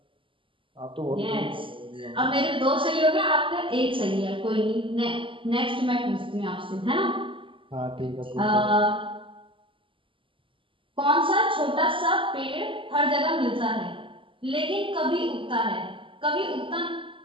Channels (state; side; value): late; left; 0.25 ms